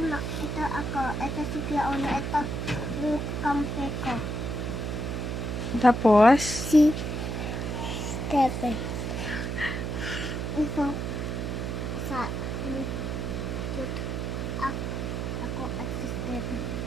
Mac, ito ako, ito si Kuya Ono, ito yung kampe ko. Tapos? Si Stephen. Ito, sa, ako at si Stephen.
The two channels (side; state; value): right; noise; hum, 2 dB below the sound